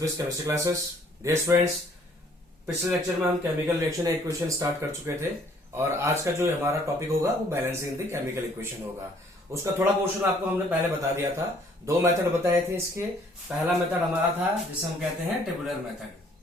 chemistry classes. Dear students, पिछले लेक्चर में हम केमिकल रिएक्शन इक्वेशन स्टार्ट कर चुके थे और आज का जो हमारा टॉपिक होगा वो बैलेंसिंग द केमिकल इक्वेशन होगा। उसका थोड़ा पोर्शन आपको हमने पहले बता दिया था। दो मेथड बताए थे इसके। पहला मेथड हमारा था जिसे हम कहते हैं टेबुलर मेथड,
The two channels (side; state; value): both; normal; correlation 0.61